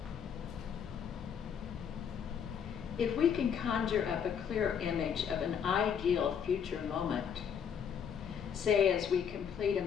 If we can conjure up a clear image of an ideal future moment, say as we complete a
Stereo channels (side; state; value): right; quieter; 7.7 dB